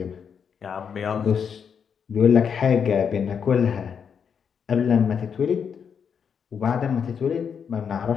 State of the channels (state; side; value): quieter; right; 7.0 dB